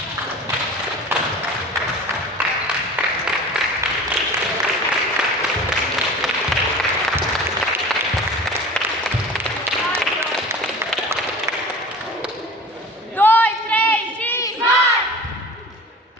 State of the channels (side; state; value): both; normal; correlation 0.39